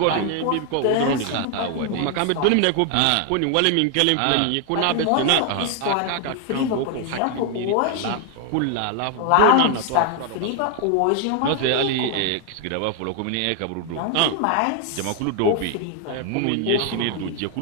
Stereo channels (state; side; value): different; both; correlation 0.00